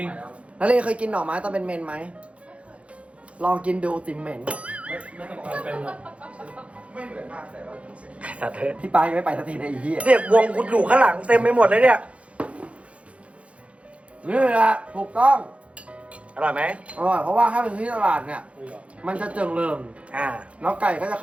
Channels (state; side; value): late; left; 0.062 ms